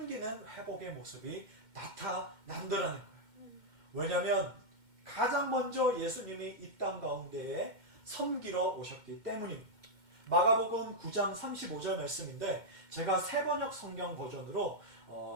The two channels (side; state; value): left; late; 2.1 ms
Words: 회복의 모습이 나타난다라는 거예요. 왜냐하면 가장 먼저 예수님이 이 땅 가운데에 섬기러 오셨기 때문입니다. 마가복음 9장 35절 말씀인데, 제가 새번역 성경 버전으로